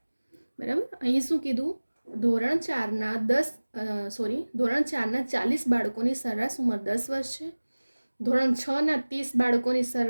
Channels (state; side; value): inverted; both; correlation -1.00